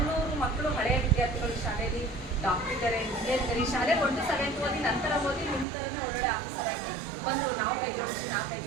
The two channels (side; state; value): left; drops out; at 5.7 s